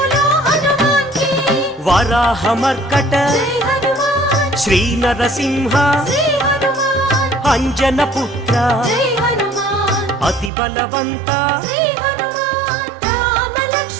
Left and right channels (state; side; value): drops out; left; at 10.5 s